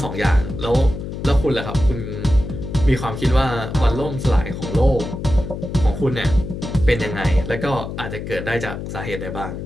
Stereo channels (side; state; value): left; noise; hum, 7 dB below the sound